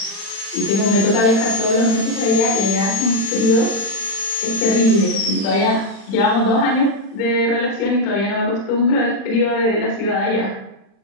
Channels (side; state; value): right; late; 36 ms